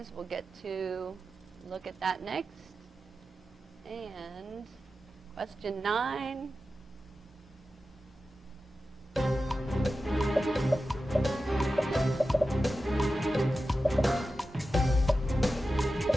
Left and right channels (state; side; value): normal; both; correlation 0.93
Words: We'll get to look at that next. And question 9. All